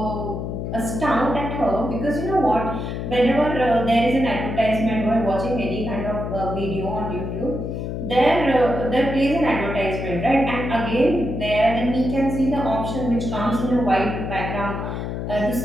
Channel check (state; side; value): noise; left; hum, 4 dB below the sound